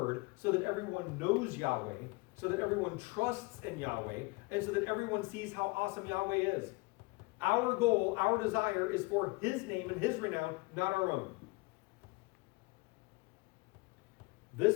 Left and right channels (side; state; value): right; quieter; 25.4 dB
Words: so that everyone knows Yahweh, so that everyone trusts in Yahweh, and so that everyone sees how awesome Yahweh is. Our goal, our desire is for his name and his renown, not our own. This,